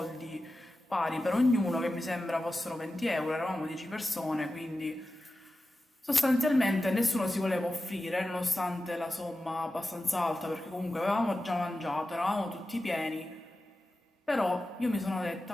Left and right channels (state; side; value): normal; both; correlation 0.93